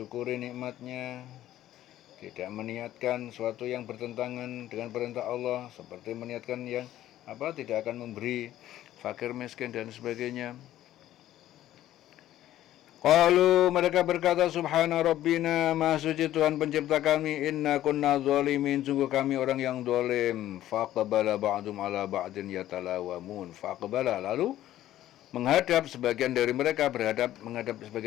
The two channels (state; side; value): quieter; right; 13.3 dB